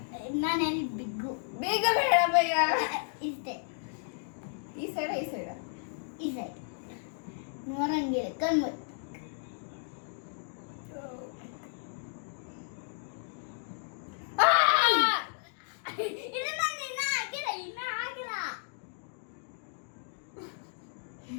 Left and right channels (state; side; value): silent; right; digital silence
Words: ನಾನು ಹೇಳಿ ಬಿಗ್ಗು ಬೇಗ ಬೇಡ ಭಯ್ಯ. ಇಷ್ಟೇ ಈ ಸೈಡ ಈ ಸೈಡ್ ನೋಡಂಗಿಲ್ಲ ಕಣ್ಣು